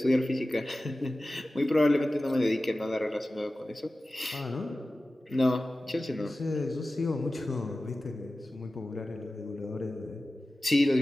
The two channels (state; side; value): normal; both; correlation 0.95